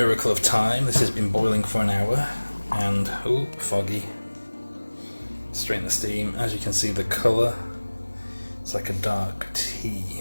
of time, this has been boiling for an hour and, oh, foggy. Strain the steam. As you can see, the colour, it's like a dark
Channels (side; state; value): both; inverted; correlation -1.00